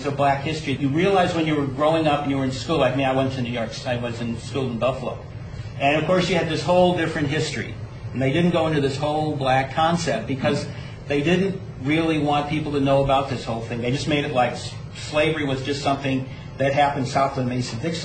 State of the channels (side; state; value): both; identical; correlation 1.00